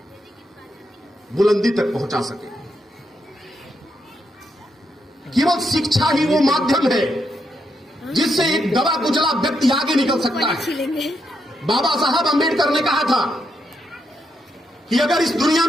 बुलंदी तक पहुंचा सके। केवल शिक्षा ही वो माध्यम है जिससे एक दबा कुचला व्यक्ति आगे निकल सकता है। बाबा साहब अंबेडकर ने कहा था कि अगर इस दुनिया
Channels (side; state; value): both; normal; correlation 0.80